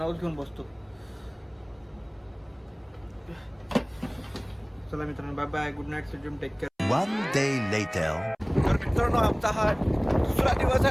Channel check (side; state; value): both; identical; correlation 1.00